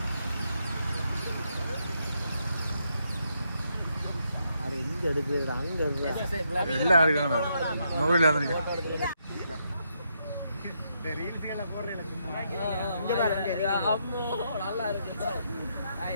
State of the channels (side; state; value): both; inverted; correlation -0.78